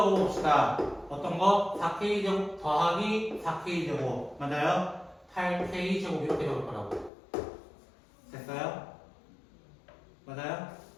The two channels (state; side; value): drops out; right; at 7.1 s